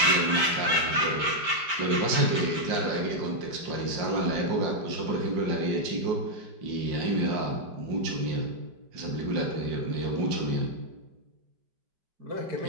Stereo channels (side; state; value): left; late; 5.1 ms